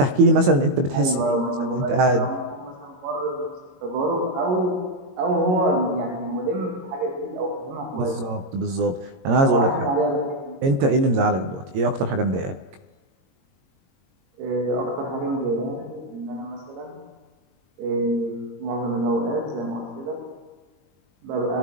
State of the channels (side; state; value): left; late; 22 ms